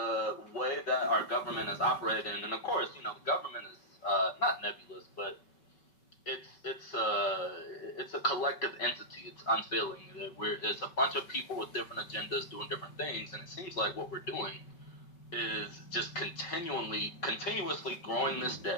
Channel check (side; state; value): right; late; 5.3 ms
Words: way that our government is operating, and of course, you know, the government is not nebulous, but it's a collective entity. It's unfailing. It's a bunch of people with different agendas doing different things, and it seems like what we're doing is just continuously growing this